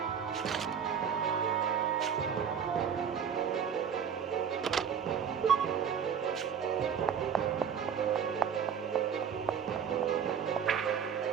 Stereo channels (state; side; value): quieter; left; 7.6 dB